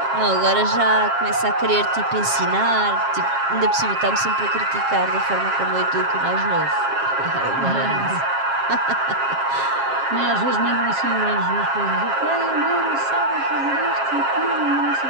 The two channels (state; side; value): late; left; 7.4 ms